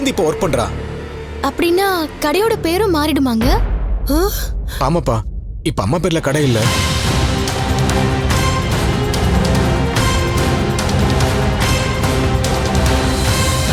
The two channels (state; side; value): identical; both; correlation 1.00